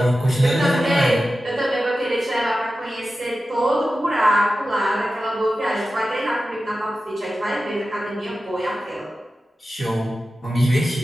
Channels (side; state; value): both; normal; correlation 0.93